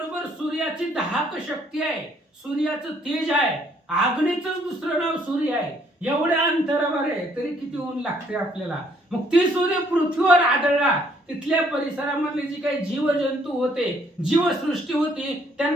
सूर्याची दाहक शक्ती आहे, सूर्याचं तेज आहे, आग्नेचंच दुसरं नाव सूर्य आहे. एवढ्या अंतरावर आहे तरी किती ऊन लागते आपल्याला. मग ते सूर्य पृथ्वीवर आदळला. तिथल्या परिसरामधले जी काही जीवजंतू होते, जीवसृष्टी होती,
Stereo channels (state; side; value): normal; both; correlation 0.65